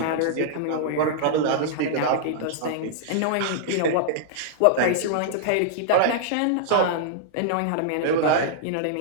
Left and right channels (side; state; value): both; different; correlation -0.02